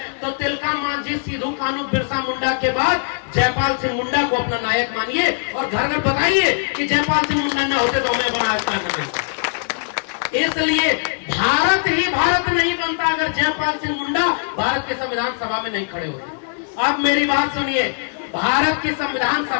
तो तिलका मांझी, सिद्धू कान्हू, बिरसा मुंडा के बाद जयपाल सिंह मुंडा को अपना नायक मानिए और घर घर बताइए कि जयपाल सिंह मुंडा न होते तो हमें बड़ा अच्छा नहीं। इसलिए भारत ही भारत नहीं बनता अगर जयपाल सिंह मुंडा भारत के संविधान सभा में नहीं खड़े होते। अब मेरी बात सुनिए, भारत की संविधान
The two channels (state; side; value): silent; right; digital silence